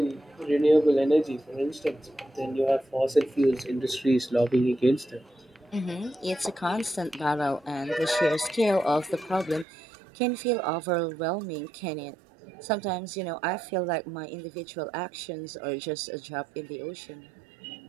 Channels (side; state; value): left; drops out; at 9.7 s